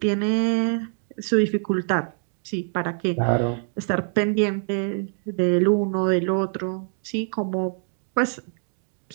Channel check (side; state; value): left; silent; digital silence